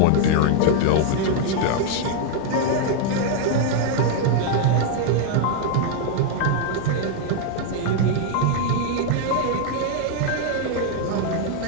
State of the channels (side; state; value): both; different; correlation 0.00